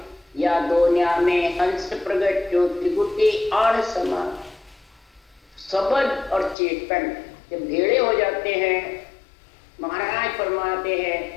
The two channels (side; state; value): right; drops out; at 6.6 s